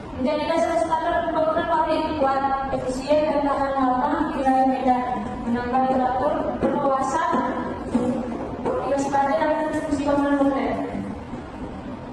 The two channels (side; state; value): both; identical; correlation 1.00